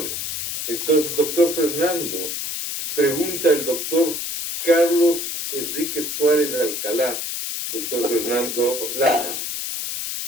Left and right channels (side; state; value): left; noise; hiss, 4 dB below the sound